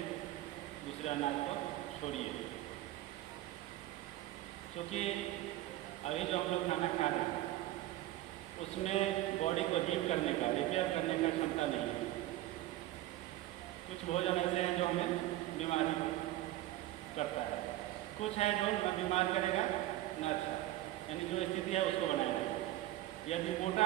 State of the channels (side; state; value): left; quieter; 15.3 dB